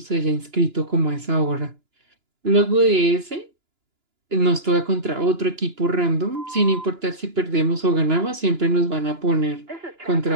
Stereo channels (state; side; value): late; left; 2.9 ms